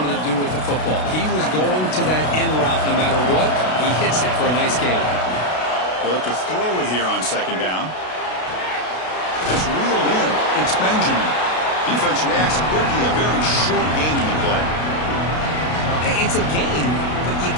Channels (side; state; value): right; late; 32 ms